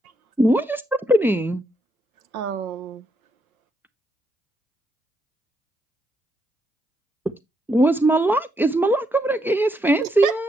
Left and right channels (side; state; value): both; normal; correlation 0.78